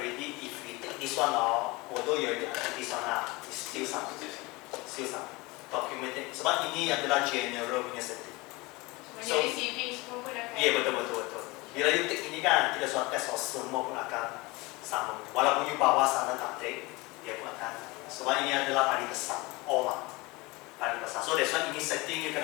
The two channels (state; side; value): quieter; right; 23.6 dB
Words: if we take this one now, although you already untick this one lah, it's still some. Documented. Sebab ini adalah general punya setting. Sebenarnya receiving semua pun akan. Ya, betul. Bila you take ini kan, kita sudah test semua pun akan sama. Walaupun you bawa sana tak take, dia pun akan. Sebab ini adalah paling besar, all lah. Paling besar. So that's why ini setting you